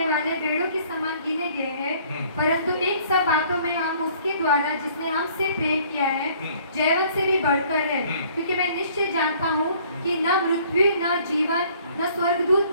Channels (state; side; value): inverted; both; correlation -0.57